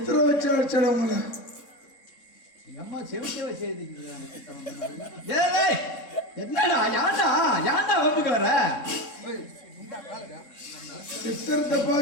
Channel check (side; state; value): right; late; 3.6 ms